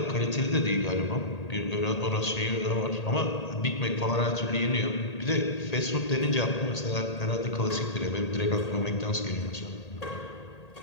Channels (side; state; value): right; late; 1.8 ms